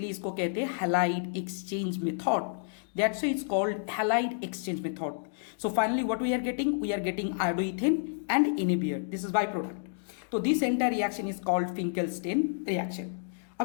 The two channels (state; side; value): silent; right; digital silence